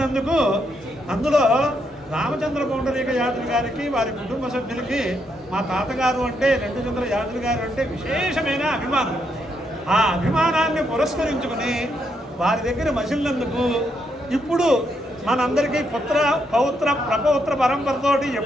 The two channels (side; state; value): both; normal; correlation 0.78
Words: అందులో రామచంద్ర పౌండరీక యాదవ్ గారికి వారి కుటుంబ సభ్యులకి మా తాతగారు అంటే రెండుచంద్ర యాదవ్ గారు అంటే విశేషమైన అభిమానం. ఆ అభిమానాన్ని పురస్కరించుకుని వారి దగ్గర మసిలినందుకు ఇప్పుడు మనందరికీ పుత్ర పౌత్ర ప్రపౌత్ర పరంపరతోటి